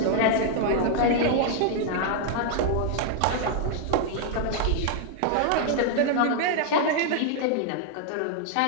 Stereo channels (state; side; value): different; both; correlation 0.00